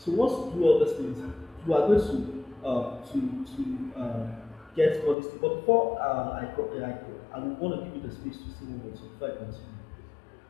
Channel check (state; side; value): drops out; right; at 5.2 s